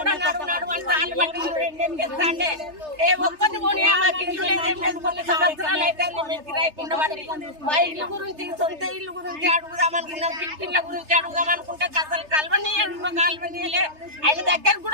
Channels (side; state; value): left; late; 3.3 ms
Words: నడువు అంటే వాళ్ళు బట్టి రెండేం చేస్తాండే ఏ ఒక్కటి పోనీ మాకు ఇల్లు లేదేం లేదు. కొన్ని సంవత్సరాలు అయితే మేము కిరాయికుండా పడి మా ఇల్లు గురించి సొంత ఇల్లు గురించి అడుగుదాం అనుకున్నాం, పిట్టిళ్ళ గురించి అడుగుదాం అనుకుంటే అసలు కలవనీయలే, ఆయన దగ్గర